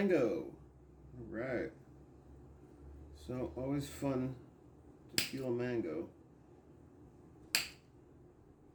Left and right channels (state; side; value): identical; both; correlation 1.00